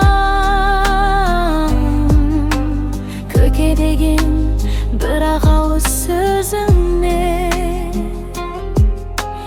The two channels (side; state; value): both; identical; correlation 1.00